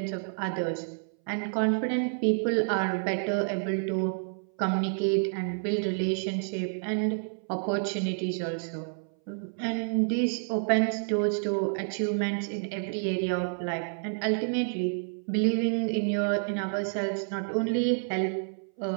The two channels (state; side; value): silent; left; 58 dB below the other